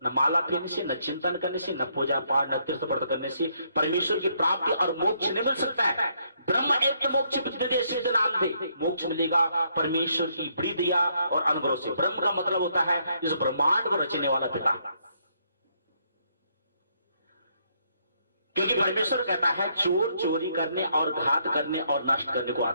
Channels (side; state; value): both; inverted; correlation -0.72